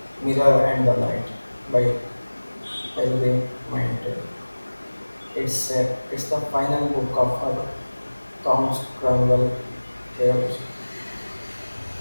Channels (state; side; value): inverted; both; correlation -1.00